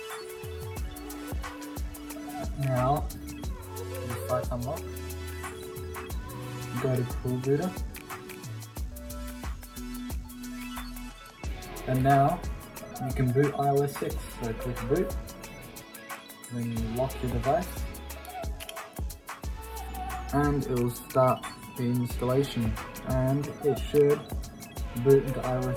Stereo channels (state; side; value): identical; both; correlation 1.00